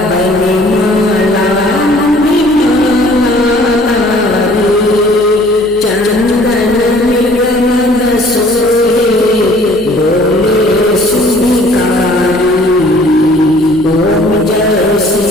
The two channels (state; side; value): noise; left; hum, 22 dB below the sound